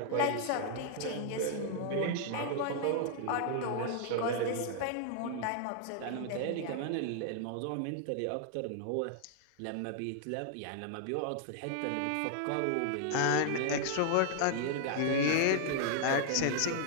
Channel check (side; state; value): both; different; correlation -0.01